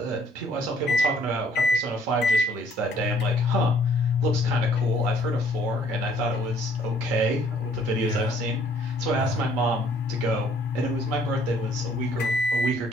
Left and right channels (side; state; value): both; normal; correlation 0.61